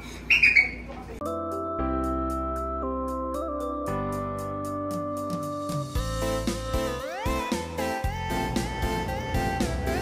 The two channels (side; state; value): both; identical; correlation 1.00